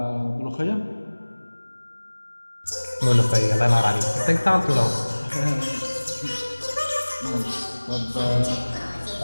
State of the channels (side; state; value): both; inverted; correlation -1.00